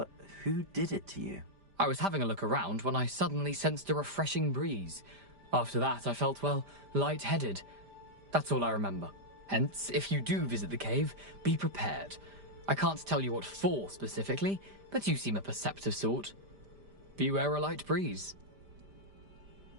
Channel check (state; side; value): late; left; 5.0 ms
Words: who did it to you? I was having a look around when I suddenly sensed a refreshing breeze. After that, I felt, well, lightheaded. That's all I remember. Hence, if you do visit the cave, be prepared. I can't tell you what for specifically, but you seem a perceptive sort. Beware a light breeze.